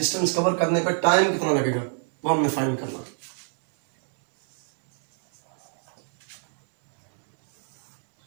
कवर करने पर टाइम कितना लगेगा वो हमने फाइंड करना।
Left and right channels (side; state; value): left; silent; digital silence